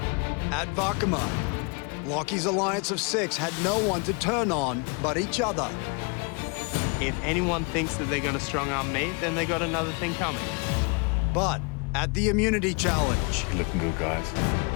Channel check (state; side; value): quieter; right; 33.2 dB